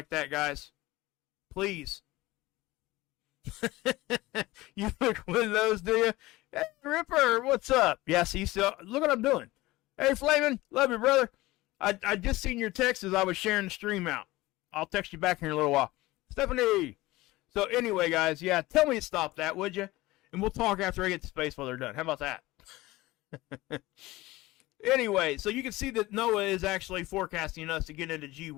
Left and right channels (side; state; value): right; quieter; 19.2 dB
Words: that, guys. Please. You look one of those, do you? Hey, Ripper, what's up? Yeah, see, so, look what I'm doing. Hey, Flamin', love you, brother. I just seen your text as I was sharing the stream out. I'll text you back here in a little while. Stephanie. So anyway, guys, yeah, tell me to stop that, would you? And we'll talk after I get to space while they're done. How about that? Anyway, so you can see that NOAA is actually forecasting us to get into